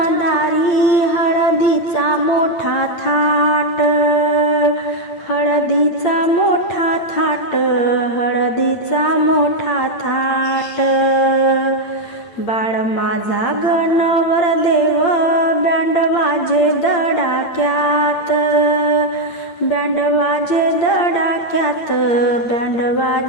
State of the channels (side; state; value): right; late; 8.7 ms